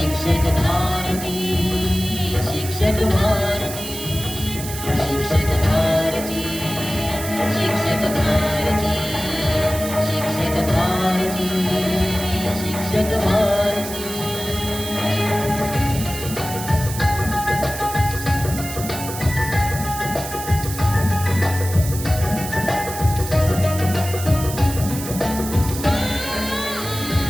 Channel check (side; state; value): right; noise; hiss, 9 dB below the sound